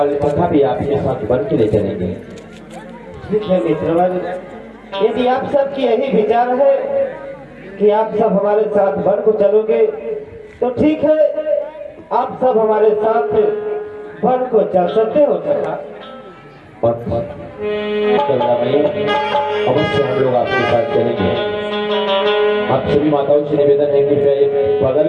सखा भी आपके साथ वन के लिए चलेंगे। ठीक है मित्रवन, यदि आप सबकी यही विचार है कि आप सब हमारे साथ वन को चलोगे तो ठीक है, आप सब हमारे साथ वन को चल सकते हो सखा। अवश्य हम लोग आपके साथ चलेंगे। आप सभी माताओं से निवेदन है कि बगल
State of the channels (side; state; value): both; identical; correlation 1.00